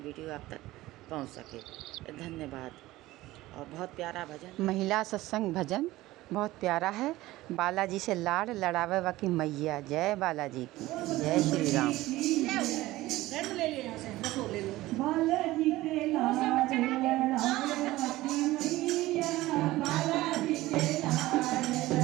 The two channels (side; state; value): left; quieter; 17.5 dB